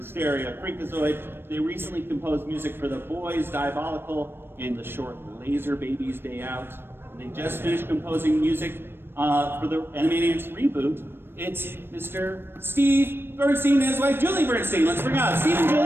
Freakazoid. They recently composed music for The Boys, Diabolical, and the short Laser Babies Day Out. And they just finished composing music for the Animaniacs reboot. It's Mr. Steve Bernstein and his wife Julie Bernstein. Let's bring out Steve and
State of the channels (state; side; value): late; left; 0.11 ms